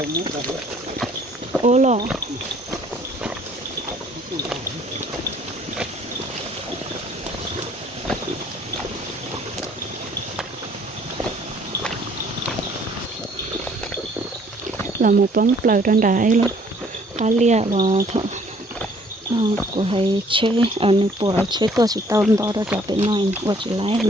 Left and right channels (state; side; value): normal; both; correlation 0.60